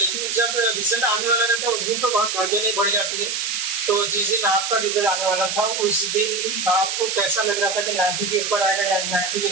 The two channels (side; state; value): right; noise; hiss, 2 dB below the sound